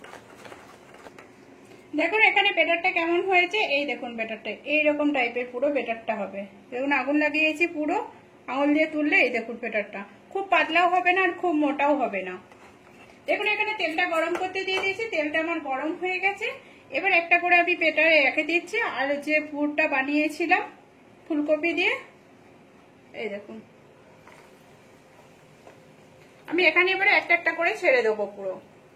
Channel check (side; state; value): both; identical; correlation 1.00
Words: দেখুন এখানে ব্যাটারটা কেমন হয়েছে, এই দেখুন ব্যাটারটা এইরকম টাইপের পুরো ব্যাটারটা হবে। দেখুন আগুন লাগিয়েছি পুরো, আঙুল দিয়ে তুললে এই দেখুন ব্যাটারটা খুব পাতলাও হবে না আর খুব মোটাও হবে না। দেখুন এখানে তেলটা গরম করতে দিয়ে দিয়েছি, তেলটা আমার গরম হয়ে গেছে। এবার একটা করে আমি ব্যাটারে রেখে দিচ্ছি, আর যে পুরটা বানিয়েছিলাম ফুলকপি দিয়ে, এই দেখুন আমি এখানে এবারে একটা একটা করে ছেড়ে দেবো পুরো।